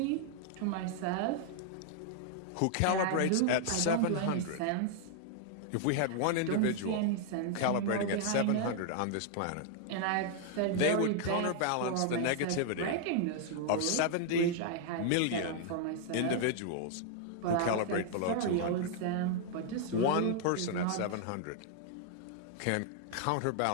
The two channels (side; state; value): both; different; correlation 0.00